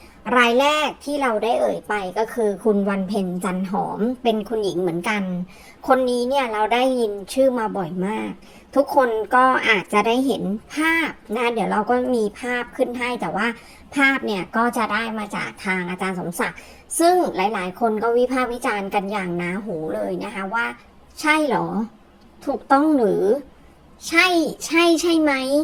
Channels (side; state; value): both; identical; correlation 1.00